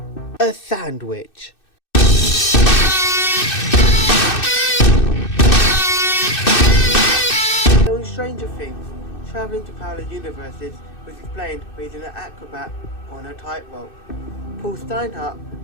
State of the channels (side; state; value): right; late; 2.6 ms